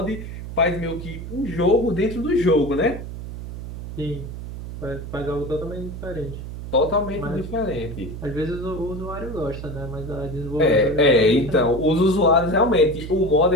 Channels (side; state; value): right; noise; hum, 9 dB below the sound